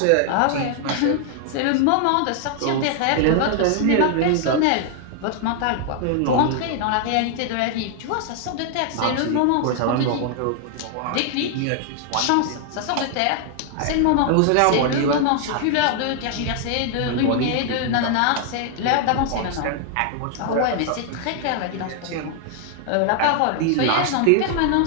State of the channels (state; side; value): different; both; correlation 0.00